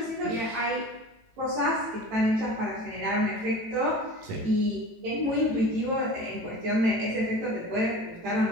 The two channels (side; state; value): left; late; 18 ms